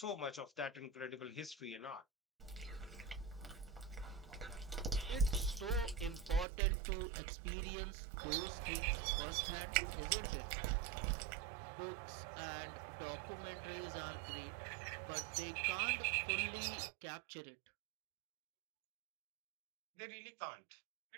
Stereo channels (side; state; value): left; drops out; at 6.5 s